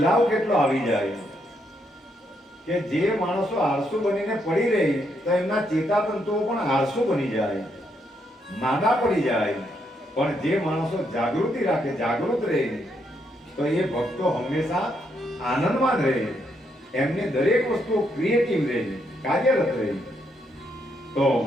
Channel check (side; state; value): both; normal; correlation 0.77